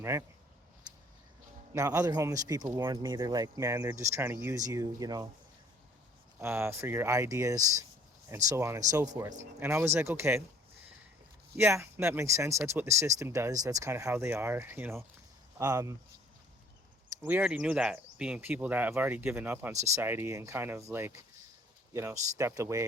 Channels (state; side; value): normal; both; correlation 0.55